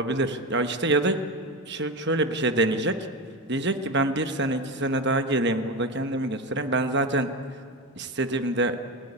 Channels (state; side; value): normal; both; correlation 0.19